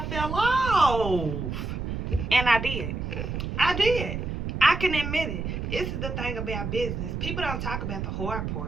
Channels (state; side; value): noise; right; rumble, 4 dB below the sound